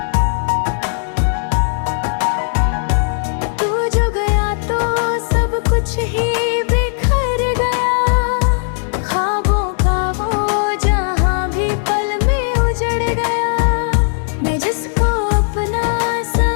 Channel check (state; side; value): silent; right; digital silence